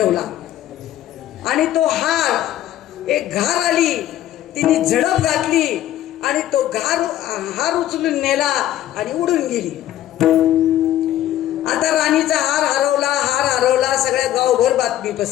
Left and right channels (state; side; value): quieter; right; 12.8 dB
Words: आणि तो हार, एक घार आली, तिने झडप घातली आणि तो हार उचलून नेला आणि उडून गेली. आता राणीचा हार हरवला, सगळ्या गावभर बातमी